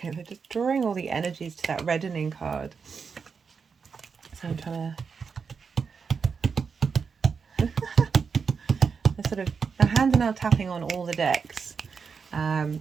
Okay, they're just drawing all the energies to that reddening card. So I'm trying to... they're sort of... my hands are now tapping on all the decks.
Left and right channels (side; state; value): left; quieter; 5.7 dB